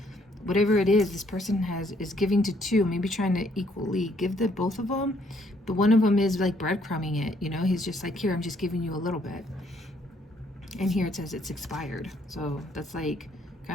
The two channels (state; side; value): normal; both; correlation 0.67